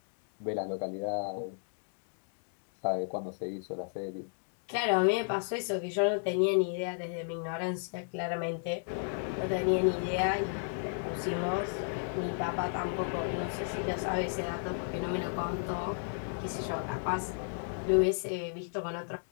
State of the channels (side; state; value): right; silent; digital silence